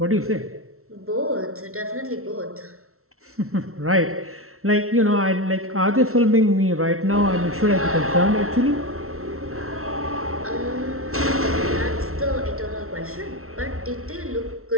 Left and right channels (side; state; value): left; late; 0.63 ms